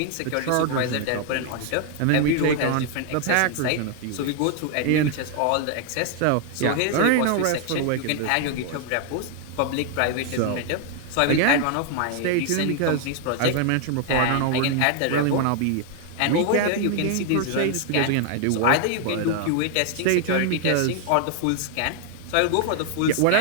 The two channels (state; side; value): different; both; correlation 0.00